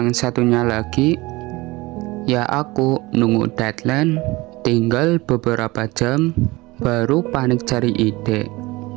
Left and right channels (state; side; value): quieter; left; 21.5 dB